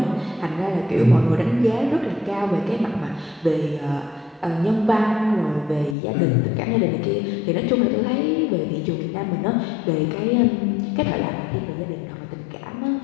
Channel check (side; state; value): right; drops out; at 6.0 s